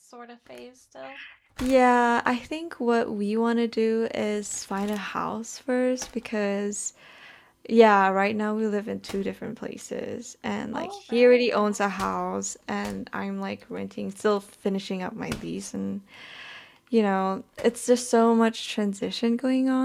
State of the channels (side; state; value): both; identical; correlation 1.00